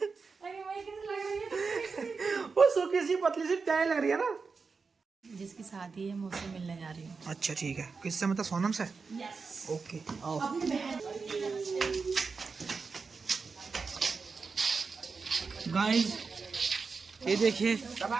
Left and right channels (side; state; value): left; quieter; 4.8 dB